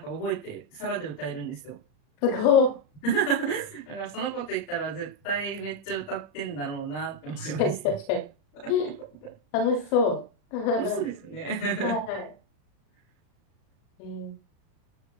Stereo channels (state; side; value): late; right; 39 ms